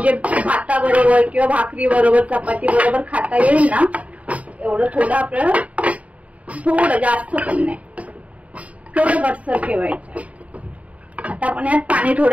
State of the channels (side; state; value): left; late; 0.067 ms